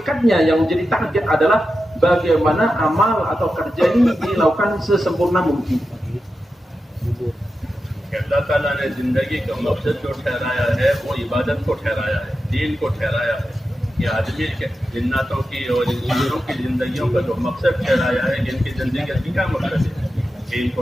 yang menjadi target adalah bagaimana amal atau kerja ini dilakukan sesempurna mungkin. अल्लाह ताला ने जिंदगी का मकसद जो ठहराया है वो इबादत को ठहराया है। दीन को ठहराया है, ये आदमी के जिन्नातों की और इंसानों की जिंदगियों का जो मकसद ठहराया है, इनकी जिंदगी का क्या मकसद है? दीन को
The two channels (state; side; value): normal; both; correlation 0.91